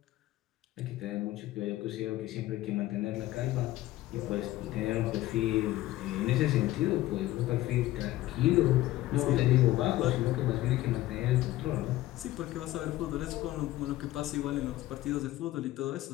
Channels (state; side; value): quieter; right; 15.9 dB